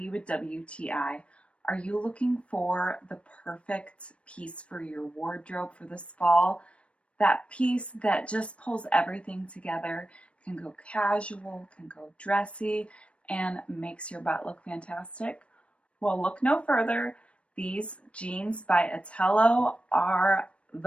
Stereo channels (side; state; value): right; late; 0.061 ms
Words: with WTI. Are you looking for the perfect piece for your wardrobe for this fall? That piece that just pulls everything together, can go casual, can go dressy, and makes your butt look fantastic? Well, look no further. These jeans by ETTELO are